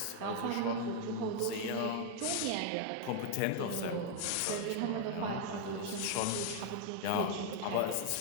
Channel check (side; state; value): both; different; correlation 0.00